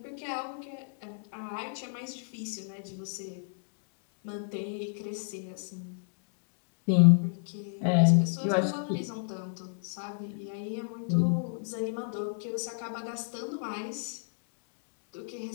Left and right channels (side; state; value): right; silent; digital silence